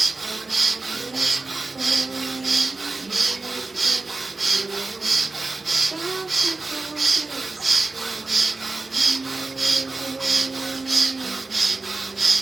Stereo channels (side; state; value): left; quieter; 3.5 dB